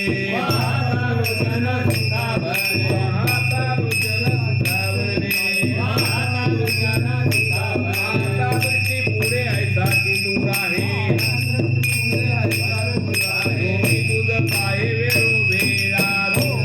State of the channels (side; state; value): both; identical; correlation 1.00